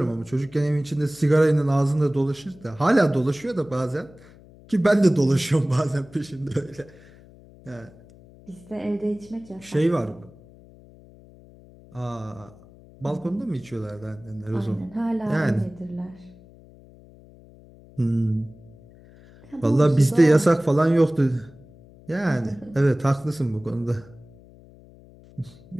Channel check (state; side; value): noise; left; hum, 23 dB below the sound